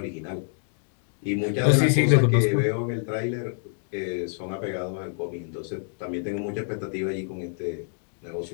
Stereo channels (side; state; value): right; silent; digital silence